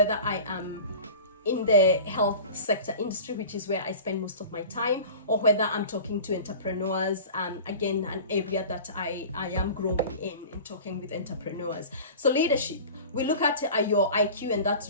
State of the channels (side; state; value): both; inverted; correlation -0.37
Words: I am in the health sector industry, which is where I spend most of my time, or whether I'm talking to entrepreneurs, again, an area that I am growing in talking with entrepreneurs. So leadership, we look at your IQ, and that's